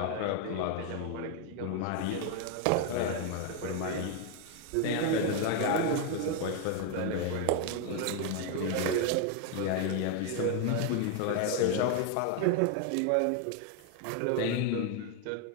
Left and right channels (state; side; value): different; both; correlation 0.01